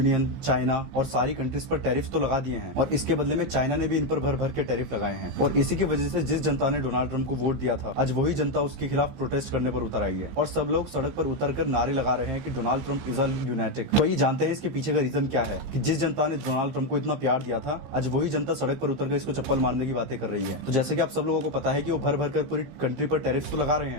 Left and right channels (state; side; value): late; left; 15 ms